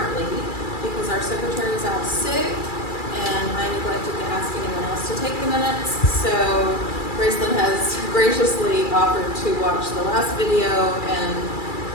because our secretary was out sick and I neglected to ask anyone else to take the minutes. So Gracelyn has graciously offered to watch the last video and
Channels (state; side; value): late; right; 2.3 ms